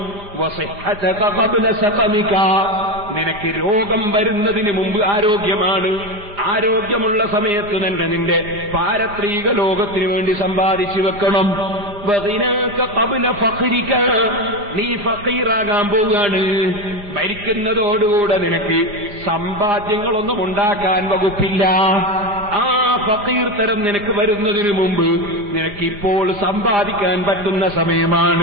വസിഹ്ഹതക ഖബ്ല സഖമിക, നിനക്ക് രോഗം വരുന്നതിന് മുമ്പ് ആരോഗ്യമാണ്. ആരോഗ്യമുള്ള സമയത്ത് തന്നെ നിന്റെ പാരത്രിക ലോകത്തിനു വേണ്ടി സമ്പാദിച്ചു വെക്കണം. വഗിനാക ഖബ്ല ഫഖ്രിക, നീ ഫഖീറാകാൻ പോവുകയാണ്. മരിക്കുന്നതോടുകൂടെ നിനക്ക് സമ്പാദ്യങ്ങളൊന്നും ഉണ്ടാക്കാൻ വകുപ്പില്ല. ആ ഫഖീർ തരം നിനക്ക് വരുന്നതിന് മുമ്പ് നിനക്കിപ്പോൾ സമ്പാദിക്കാൻ പറ്റുന്ന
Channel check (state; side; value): late; left; 4.9 ms